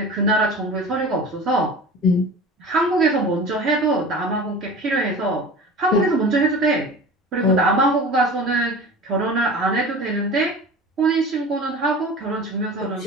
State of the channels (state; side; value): normal; both; correlation 0.36